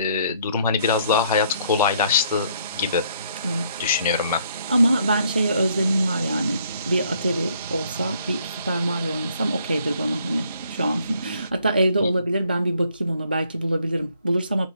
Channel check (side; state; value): both; inverted; correlation -0.66